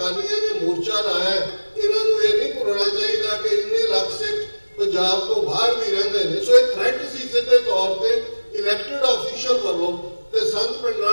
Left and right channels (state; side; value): inverted; both; correlation -1.00